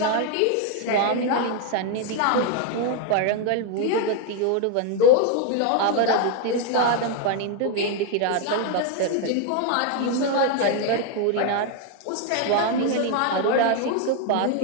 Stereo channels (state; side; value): different; both; correlation 0.01